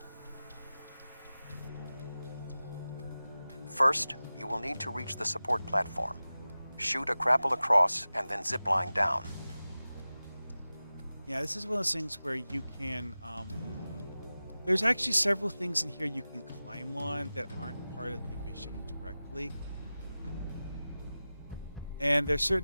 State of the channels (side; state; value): both; inverted; correlation -0.96